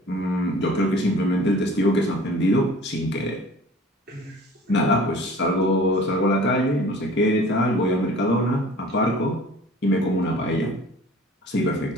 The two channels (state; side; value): normal; both; correlation 0.46